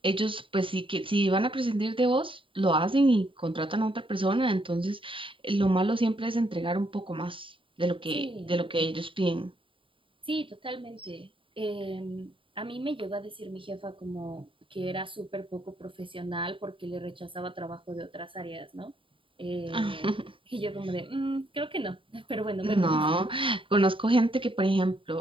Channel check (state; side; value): late; left; 0.25 ms